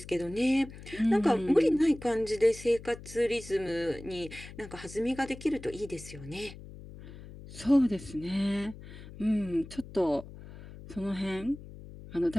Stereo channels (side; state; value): left; noise; hum, 15 dB below the sound